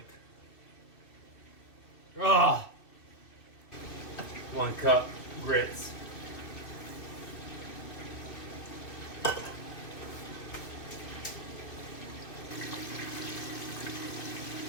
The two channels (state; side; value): late; right; 2.4 ms